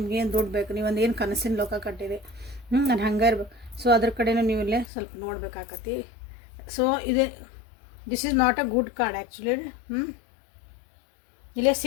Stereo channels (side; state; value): right; drops out; at 4.9 s